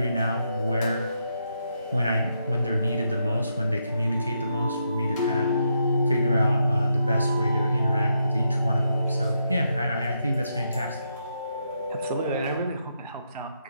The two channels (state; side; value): inverted; both; correlation -0.80